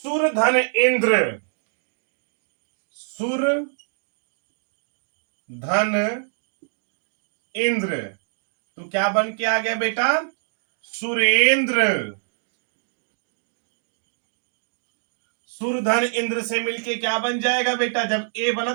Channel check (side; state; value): left; silent; digital silence